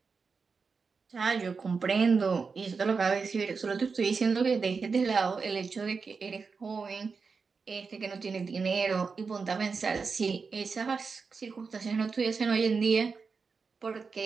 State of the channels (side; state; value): left; quieter; 5.0 dB